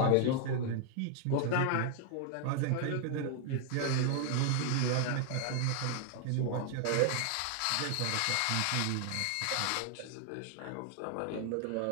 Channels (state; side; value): different; both; correlation 0.00